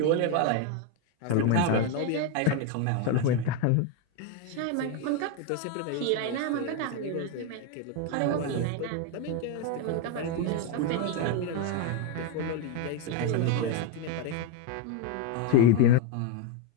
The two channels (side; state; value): both; different; correlation 0.01